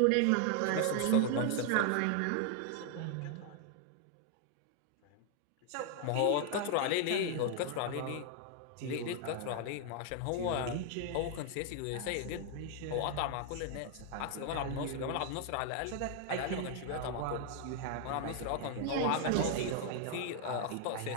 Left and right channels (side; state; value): both; different; correlation 0.00